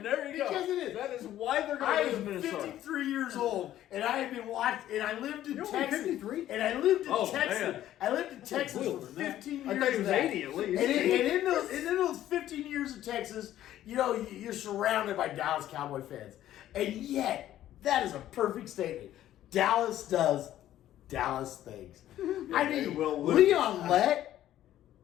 There you go. Because it is. That is why they're I going to lose am Minnesota. 53 years old, and I have been watching, and I lived in You're only Texas. 53? And I lived in Oh, Texas. man. I lived in Texas for older than that. 15 years. I thought he was of that. 80 at least. And in those 15 years of Texas, you know, you're surrounded by Dallas Cowboy fans. And yet, that is a perfect statement. Dallas does Dallas things. I they mean, will lose. Leon Lett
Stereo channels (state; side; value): quieter; right; 12.7 dB